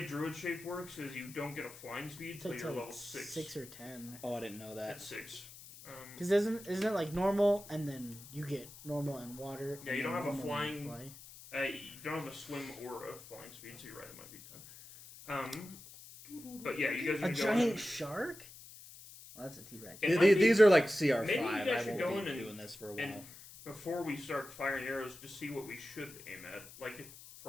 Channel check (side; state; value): left; noise; hiss, 17 dB below the sound